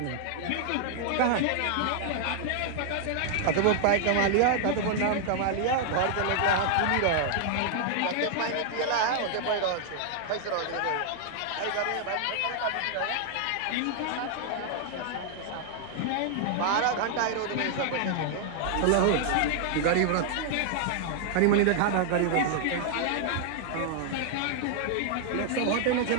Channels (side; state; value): both; different; correlation 0.00